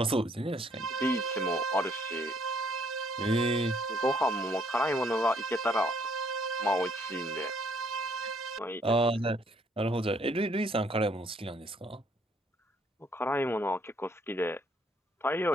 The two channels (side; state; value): both; normal; correlation 0.66